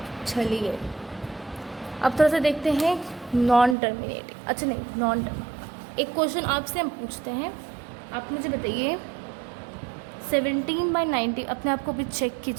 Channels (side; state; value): left; drops out; at 3.8 s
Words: चलिए अब थोड़ा सा देखते हैं नॉन टर्मिनेटिंग। अच्छा नहीं, नॉन टर्म, एक क्वेश्चन आपसे हम पूछते हैं, आप मुझे बताइए 17/90, अपने आप को भी चेक